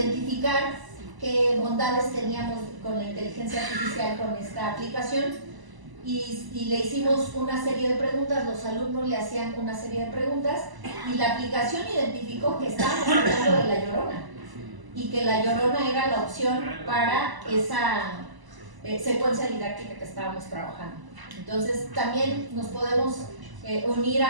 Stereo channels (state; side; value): late; left; 1.0 ms